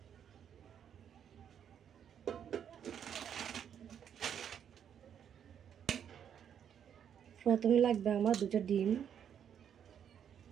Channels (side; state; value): left; quieter; 8.7 dB